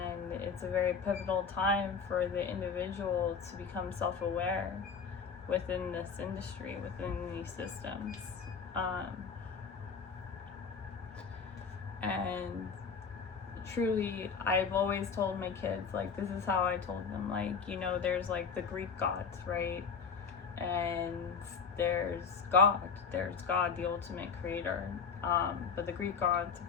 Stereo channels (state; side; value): quieter; right; 5.8 dB